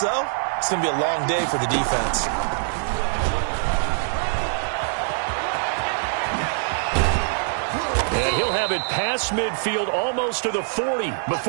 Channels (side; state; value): left; silent; digital silence